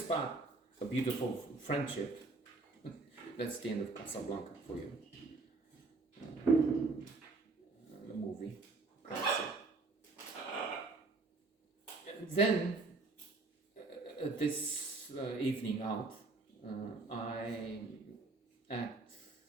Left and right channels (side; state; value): left; quieter; 3.6 dB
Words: a beautiful friendship. That's the end of Casablanca for you. The movie. Then, this evening out, I act